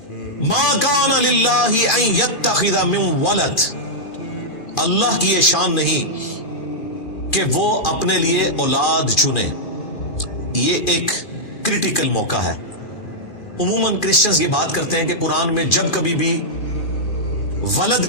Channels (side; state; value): right; late; 2.4 ms